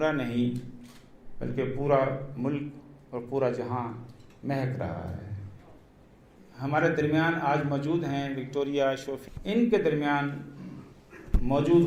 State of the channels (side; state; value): both; identical; correlation 1.00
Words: نہیں بلکہ پورا ملک اور پورا جہاں مہک رہا ہے. ہمارے درمیان آج موجود ہیں وکٹوریا شوفیلڈ. ان کے درمیان